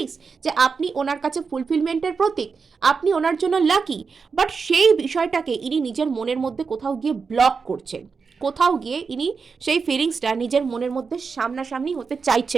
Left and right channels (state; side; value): quieter; left; 5.2 dB